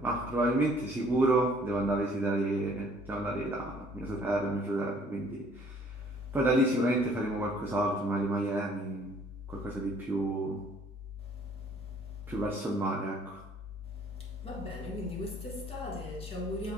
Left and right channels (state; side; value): normal; both; correlation 0.58